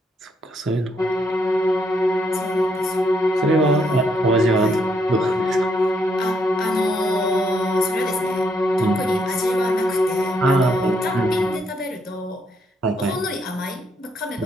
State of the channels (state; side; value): normal; both; correlation 0.74